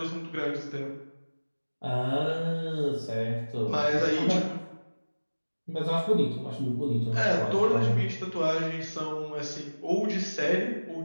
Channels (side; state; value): both; inverted; correlation -1.00